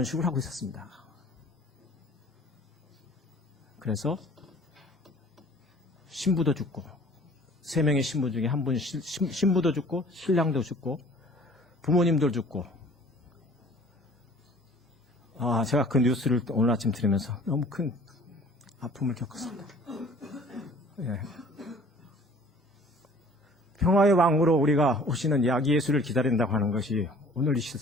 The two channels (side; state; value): both; normal; correlation 0.50